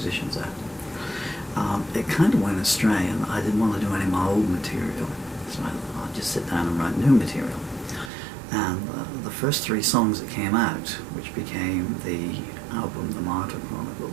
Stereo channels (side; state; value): left; drops out; at 8.1 s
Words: there. It kind of went astray, and I didn't want to do any of my old material, so I thought I'd just sit down and write new material. And the first 3 songs that came out, which became the album The Martyr